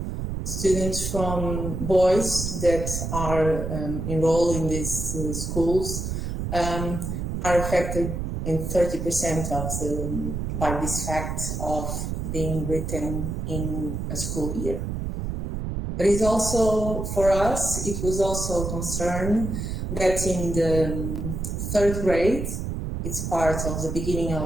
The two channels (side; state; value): right; noise; rumble, 3 dB below the sound